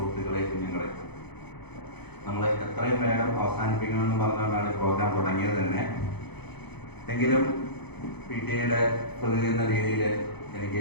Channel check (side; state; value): right; late; 0.98 ms